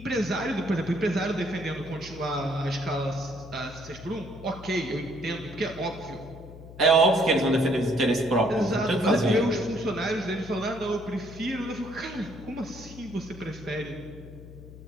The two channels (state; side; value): noise; left; hum, 16 dB below the sound